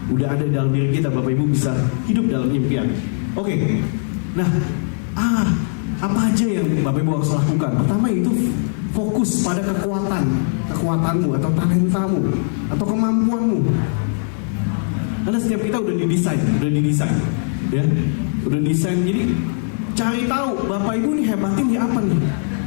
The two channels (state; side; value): silent; right; 66 dB below the other